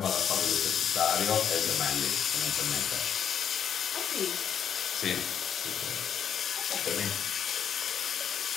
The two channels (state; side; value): quieter; right; 8.4 dB